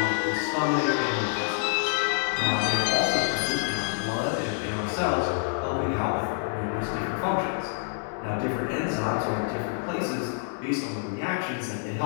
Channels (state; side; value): silent; right; digital silence